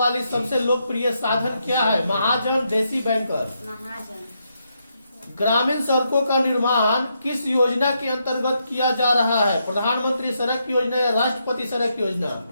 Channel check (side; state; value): both; inverted; correlation -0.80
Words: सबसे लोकप्रिय साधन क्या है? महाजन, देसी बैंकर? महाजन। ग्रामीण सड़कों का निर्माण किस योजना के अंतर्गत किया जा रहा है? प्रधानमंत्री सड़क योजना या राष्ट्रपति सड़क योजना?